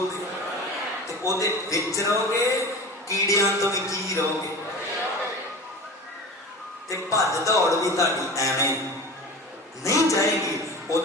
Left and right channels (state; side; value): normal; both; correlation 0.34